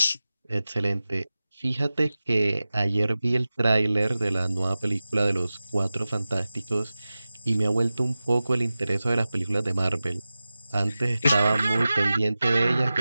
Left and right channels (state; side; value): inverted; both; correlation -0.96